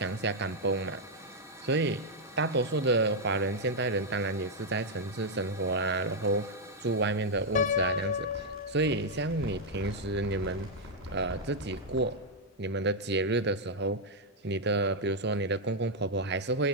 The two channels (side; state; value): both; normal; correlation -0.02